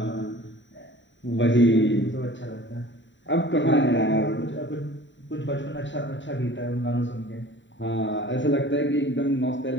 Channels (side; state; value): right; late; 0.54 ms